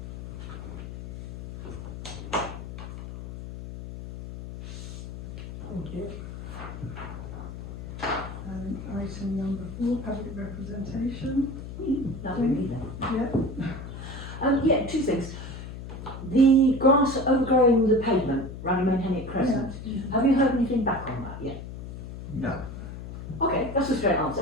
Thank you. Item number 4, public representation. That would be then. Yeah. Yeah, two things. The grass overgrowing the pavement around Menhennick Crescent. Yeah. Have you heard anything back on that yet? No. Okay, that's a straight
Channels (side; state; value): left; noise; hum, 10 dB below the sound